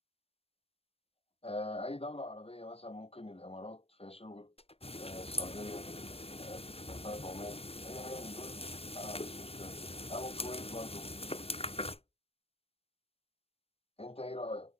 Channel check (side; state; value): right; late; 0.28 ms